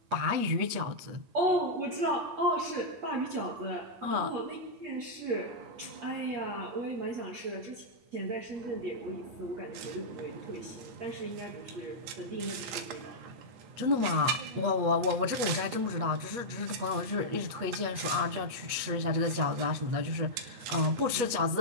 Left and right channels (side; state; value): left; late; 8.3 ms